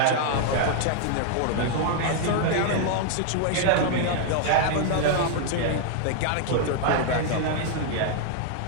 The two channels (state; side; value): different; both; correlation 0.00